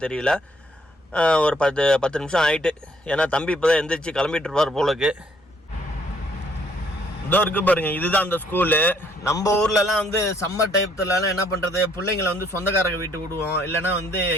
தெரியல. ஒரு 10 நிமிஷம் ஆகிட்டு. ஏன்னா தம்பி இப்போ தான் எந்திரிச்சு கிளம்பிட்டு இருப்பார் போலக்கு. இதோ இருக்கு பாருங்க, இதுதான் அந்த ஸ்கூலு. நம்ம ஊர்லலாம் வந்து சம்மர் டைத்துலலாம் என்ன பண்ணுறது, பிள்ளைங்களை வந்து சொந்தக்காரங்க வீட்டுக்கு விடுவோம், இல்லைனா வந்து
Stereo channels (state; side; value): normal; both; correlation 0.65